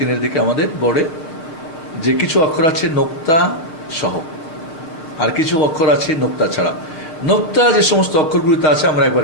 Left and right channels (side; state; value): right; late; 6.2 ms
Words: দিকে, আমাদের বোর্ডে যে কিছু অক্ষর আছে নোক্তা সহ, আর কিছু অক্ষর আছে নোক্তা ছাড়া। নোক্তা যে সমস্ত অক্ষরগুলিতে আছে আমরা